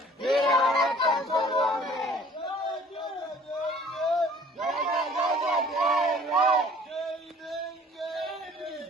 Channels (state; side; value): normal; both; correlation 0.52